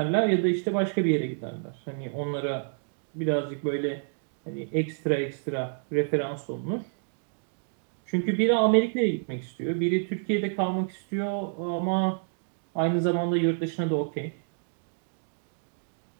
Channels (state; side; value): silent; left; digital silence